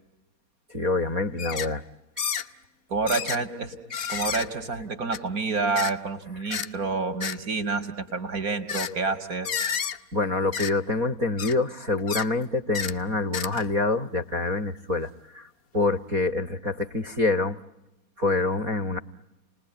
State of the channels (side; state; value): left; late; 4.1 ms